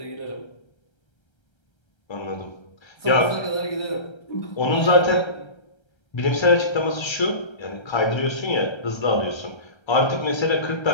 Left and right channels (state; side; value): late; right; 1.3 ms